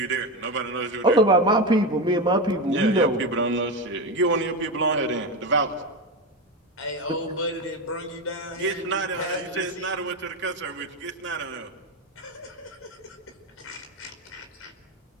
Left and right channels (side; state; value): both; normal; correlation 0.16